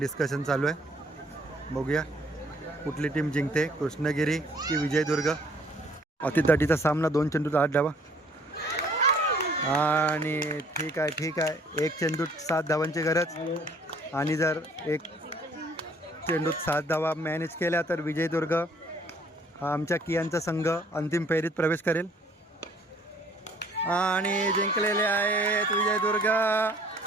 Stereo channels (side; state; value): both; normal; correlation 0.59